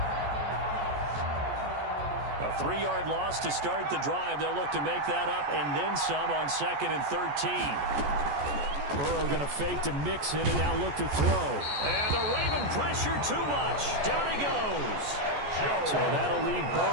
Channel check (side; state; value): left; late; 14 ms